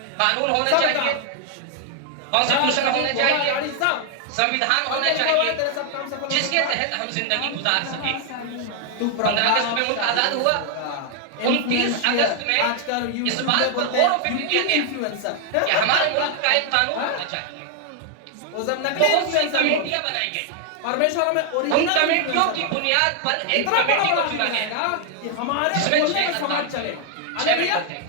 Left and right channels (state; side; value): different; both; correlation 0.00